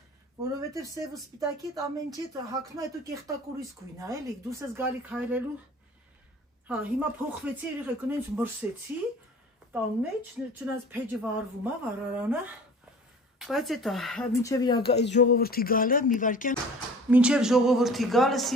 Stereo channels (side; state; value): both; normal; correlation 0.45